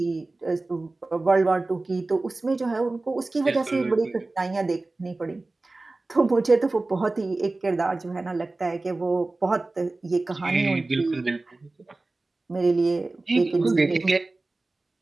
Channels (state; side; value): quieter; left; 3.2 dB